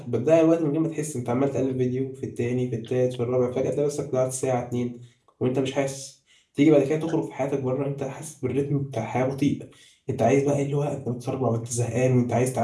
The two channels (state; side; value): identical; both; correlation 1.00